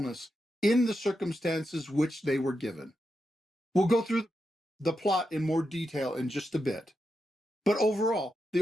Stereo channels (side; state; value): both; normal; correlation 0.87